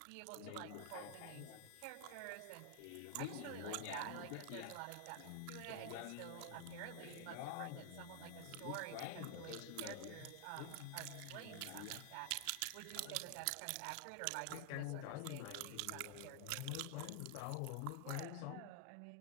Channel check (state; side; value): different; both; correlation 0.00